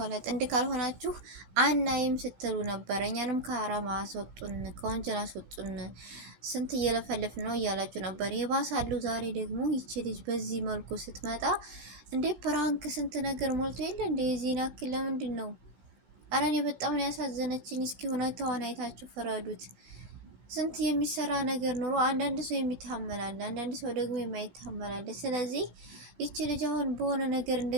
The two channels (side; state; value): left; late; 17 ms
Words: ጥንድ ካልሆናችሁ አናይም ስትሉ ነበር። እኛንም ከአራማ አስወጡን፣ ከወንጀል አስወጡን፣ ስንት እየለፈልፍ ነው እያላችሁ ነበር። የባሳሉ ዛሬ ደግሞ ይቺ ልጅ በዚህ መልኩ ስትመጣ እንዴ ፕራንክ ስንት ነገር ሞልቶ የለ እንዴ የዚህን ያክል ለምንድን ነው? አረ እኔ በጣም ነው ያሳዘነችኝ። እስኪ ሁኔታዋን አይታችሁ ፍረዱት። ስንት የሚሰራ ነገር ኑሮ አንዳንድ ሰው የሚታመላል፣ አንዳንድ ሰው ደግሞ የማይታመላል። ስለዚህ ይቺ ልጅ አሁን በሆነ ነገር